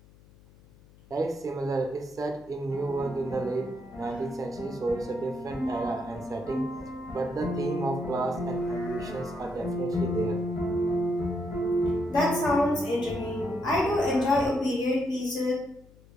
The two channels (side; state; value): left; noise; hum, 25 dB below the sound